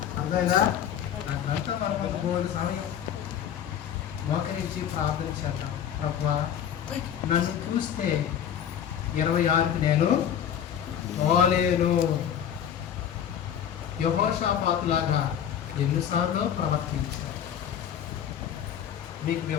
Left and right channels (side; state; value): right; quieter; 9.3 dB